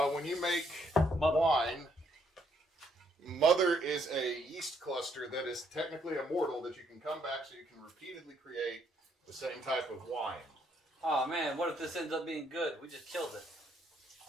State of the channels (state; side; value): normal; both; correlation 0.71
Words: When you make Mother. wine, mother is a yeast cluster that is technically immortal that you can come back so you can repeatedly create the same type of wine. Oh man, what if this ends up being good? We just killed it.